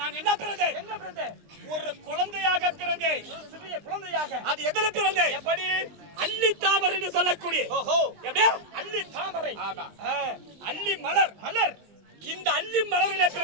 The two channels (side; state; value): left; late; 20 ms